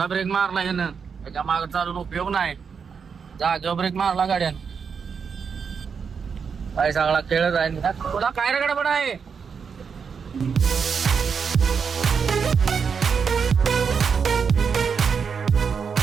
ब्रेक मारला यानं त्याच्या मागे चालून उपयोग नाही जागेवर ब्रेक मारला गाड्यान काय सगळा खेळच आहे तुला काय रगड पण आहे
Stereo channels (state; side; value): quieter; left; 6.2 dB